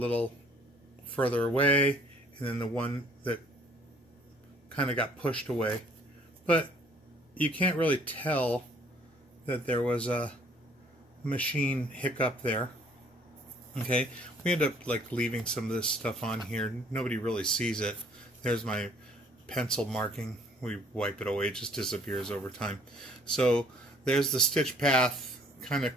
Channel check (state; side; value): normal; both; correlation 0.59